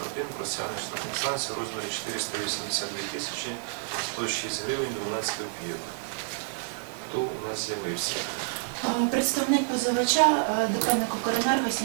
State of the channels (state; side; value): silent; left; 59 dB below the other